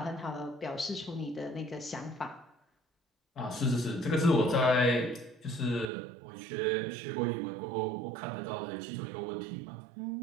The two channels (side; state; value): left; drops out; at 5.9 s